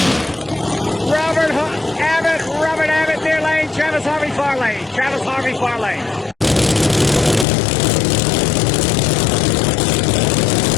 Robert Abbott, near lane. Travis Harvey, far lane.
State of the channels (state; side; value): drops out; right; at 7.5 s